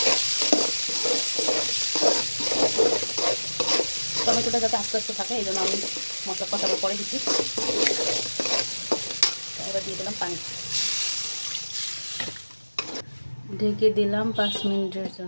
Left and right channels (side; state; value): both; inverted; correlation -1.00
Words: টমেটোটা যাতে আস্তে আস্তে থাকে এই জন্য আমি মশলা কষাবো পরে দিচ্ছি। এবার দিয়ে দিলাম পানি, ঢেকে দিলাম 5 মিনিটের